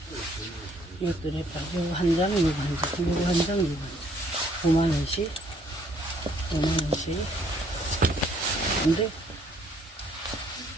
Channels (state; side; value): normal; both; correlation 0.64